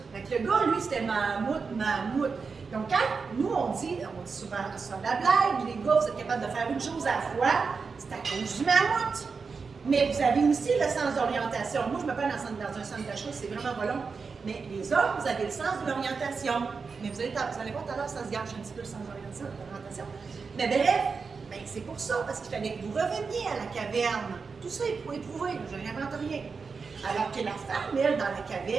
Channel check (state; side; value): quieter; left; 5.0 dB